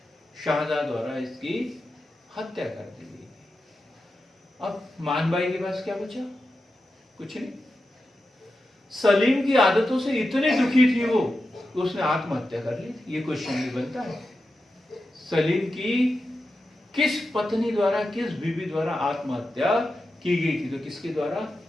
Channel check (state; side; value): normal; both; correlation 0.90